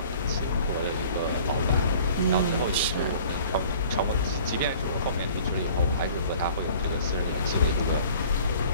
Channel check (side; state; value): both; inverted; correlation -0.49